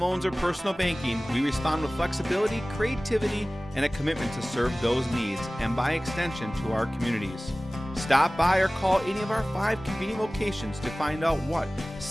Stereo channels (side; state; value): both; normal; correlation 0.98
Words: or personal banking, we respond with flexibility, creativity, and a commitment to serve those needs and by extension to our communities. Stop by or call any of our 5 convenient locations to find out what